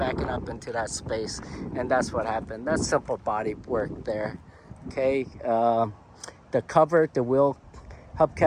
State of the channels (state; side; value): identical; both; correlation 1.00